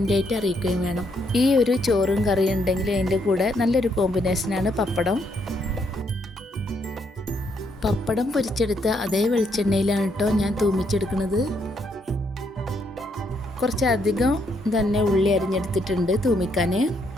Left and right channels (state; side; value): normal; both; correlation 0.74